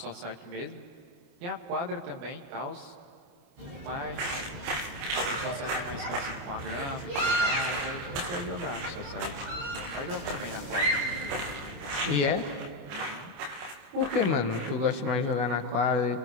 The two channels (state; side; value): late; left; 29 ms